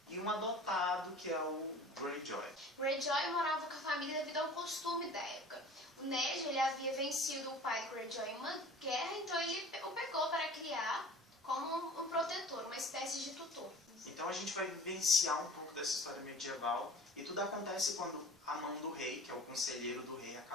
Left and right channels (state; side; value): normal; both; correlation 0.43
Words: e um adotado, que é o Greyjoy. Greyjoy morava com a família devido a um costume da época. O Ned ele havia vencido o pai de Greyjoy em uma guerra, então ele o pegou para criar como um protetor, uma espécie de tutor. Então a gente vai vivenciar um pouco dessa história medieval, e tudo acontece quando a mão do rei, que é o conselheiro do rei,